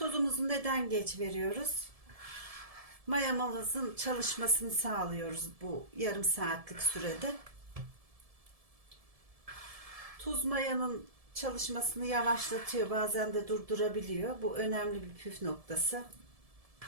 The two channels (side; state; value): left; late; 1.7 ms